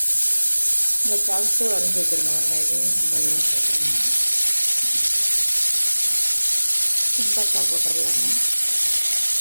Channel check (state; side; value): inverted; both; correlation -1.00